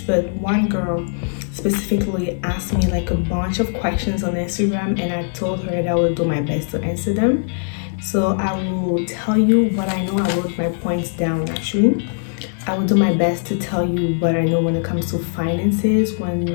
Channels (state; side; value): silent; right; digital silence